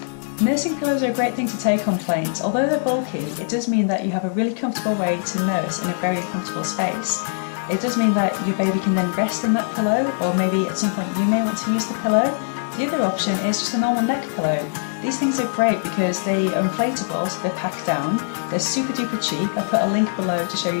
Nursing pillows are a great thing to take on planes. Although they're bulky, it does mean that you have a really comfortable way to nurse in a very uncomfortable space. It does mean that your baby can then rest in that pillow, or maybe at some point you may want to use the pillow. The other option is just a normal neck pillow. These things are great because they are inflatable, so they're packed down. They're super duper cheap. I've put a link below to show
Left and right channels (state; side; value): silent; right; digital silence